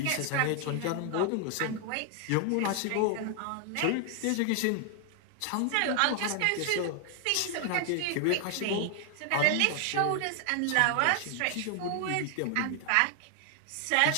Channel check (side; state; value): both; different; correlation 0.00